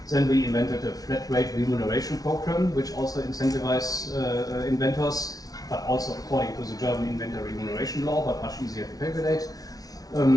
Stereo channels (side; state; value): right; late; 0.18 ms